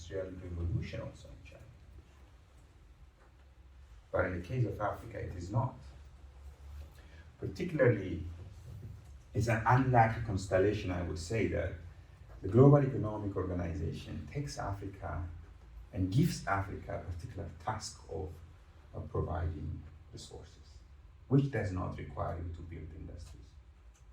revolution also in China. But in the case of Africa, it is not. Particularly, it's an unlucky constellation, I would say, that the Global Economic Organization takes Africa and gives Africa a particular task of providing resources, which does not require you to build industries,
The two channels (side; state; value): both; identical; correlation 1.00